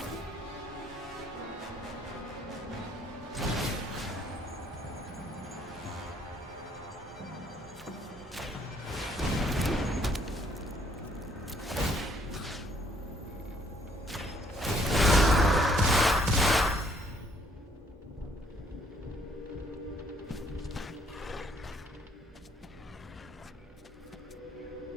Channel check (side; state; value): both; normal; correlation 0.65